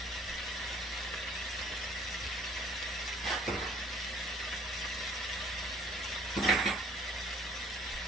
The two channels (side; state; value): both; normal; correlation 0.56